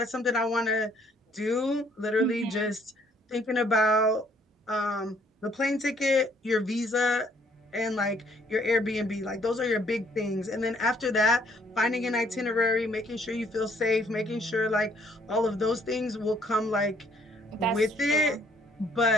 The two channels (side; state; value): both; normal; correlation 0.64